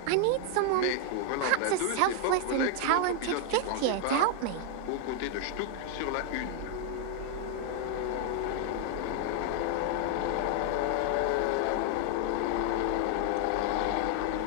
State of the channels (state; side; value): different; both; correlation 0.00